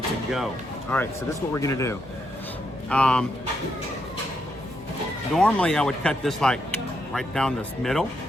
to go. All right, so this is what we're gonna do. Normally I would cut this like right down this middle,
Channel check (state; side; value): noise; left; hum, 20 dB below the sound